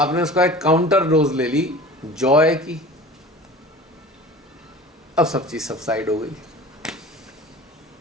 उसका एक काउंटर डोज ले ली जॉय की, अब सब चीज सबसाइड हो गई,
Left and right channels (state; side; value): normal; both; correlation 0.39